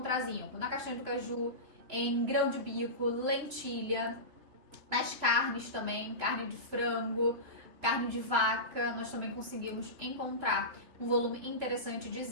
zinco? Na castanha do caju, em grão de bico, lentilha, nas carnes também, carne de frango, carne de vaca, nós também conseguimos encontrar um volume interessante de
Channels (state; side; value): late; left; 3.5 ms